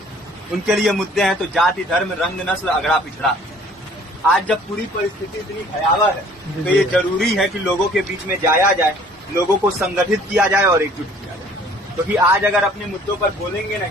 उनके लिए मुद्दे हैं तो जाति, धर्म, रंग, नस्ल, अगड़ा पिछड़ा। आज जब पूरी परिस्थिति इतनी भयावह है तो ये जरूरी है कि लोगों के बीच में जाया जाए, लोगों को संगठित किया जाए और एकजुट किया जाए। क्योंकि आज अगर अपने मुद्दों पर बोलेंगे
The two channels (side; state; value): both; normal; correlation 0.54